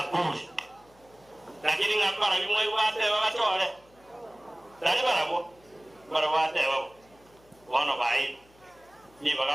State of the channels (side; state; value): left; noise; hum, 29 dB below the sound